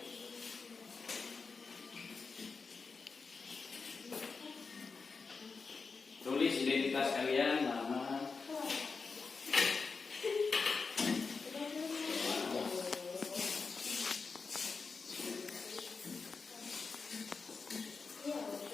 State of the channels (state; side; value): quieter; right; 4.7 dB